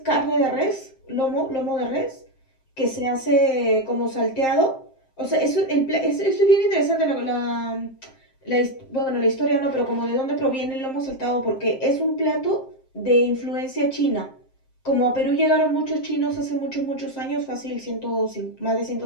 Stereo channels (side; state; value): right; late; 7.6 ms